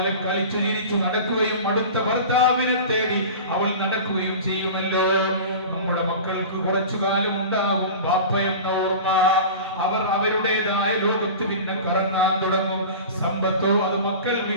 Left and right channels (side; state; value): both; inverted; correlation -0.34